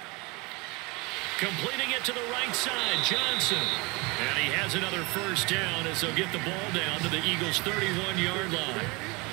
completing it to the right side. Johnson. And he has another 1st down as they'll get the ball down to the Eagles' 31-yard line.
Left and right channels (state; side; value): quieter; left; 26.8 dB